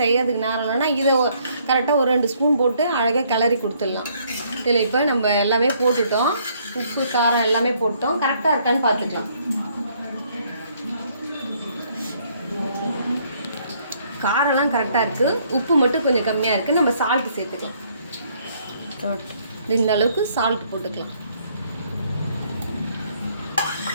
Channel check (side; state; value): both; inverted; correlation -0.66